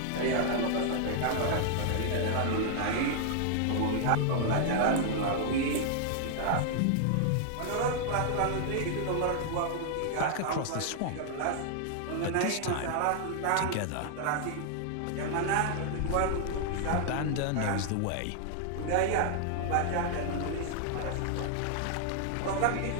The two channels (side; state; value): both; different; correlation 0.00